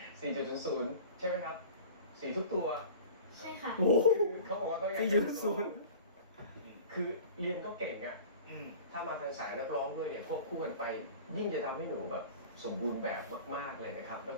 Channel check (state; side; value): inverted; both; correlation -0.41